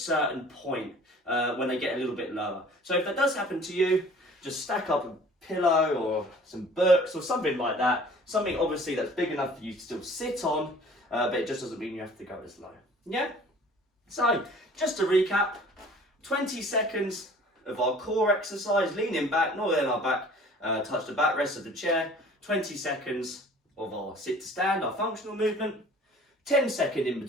point when they get a little bit lower. So if that does happen to you, just stack up a pillow or some books or something like that, something obviously that's big enough for you to still sit on, but it just doesn't mean you have to go as low. Yeah? So, just to recap, 20 seconds of our core exercise, leaning back, not letting our back touch the backrest of the chair. 20 seconds of our sit to stand, our functional movement. 10 seconds in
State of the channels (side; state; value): both; normal; correlation 0.50